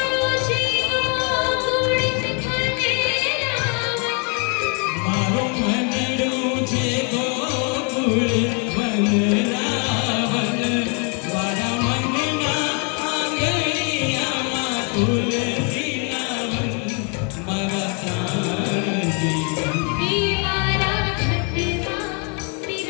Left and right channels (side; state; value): right; quieter; 37.1 dB